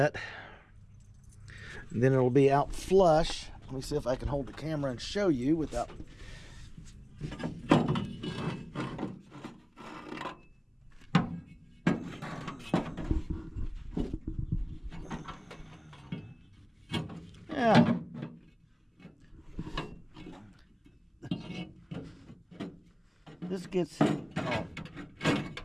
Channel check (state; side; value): identical; both; correlation 1.00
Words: and then it'll be out flush. Let me see if I can hold the camera and show you without. Yeah. This gets, oh,